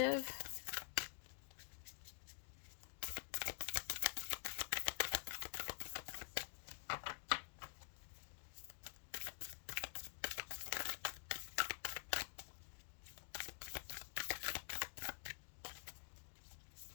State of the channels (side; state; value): right; silent; digital silence